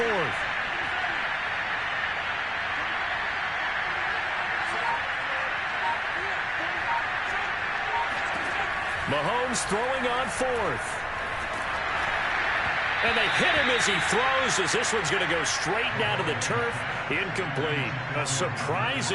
Mahomes throwing on 4th. And they hit him as he throws, as this one's going to go straight down to the turf. Incomplete. A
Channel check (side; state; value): both; identical; correlation 1.00